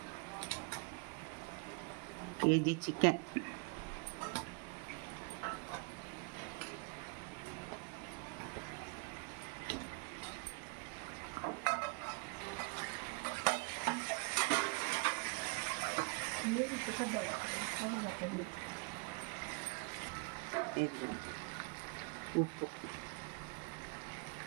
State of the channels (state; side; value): quieter; left; 32.5 dB